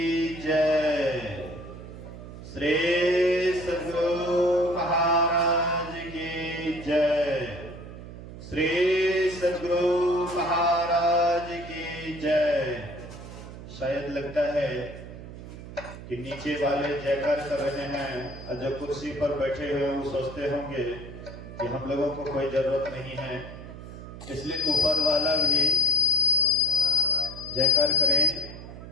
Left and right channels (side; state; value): right; noise; hum, 13 dB below the sound